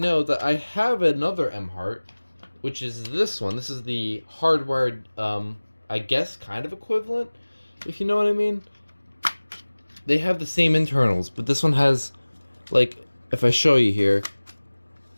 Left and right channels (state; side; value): inverted; both; correlation -1.00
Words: that I have another Emhart, which is this one. This is the hardwired, I guess, kind of equivalent, if you know what I mean. They have the same internals, but this one has, like, if I show you here,